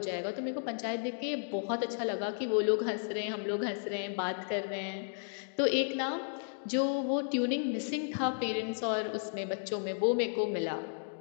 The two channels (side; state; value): right; silent; digital silence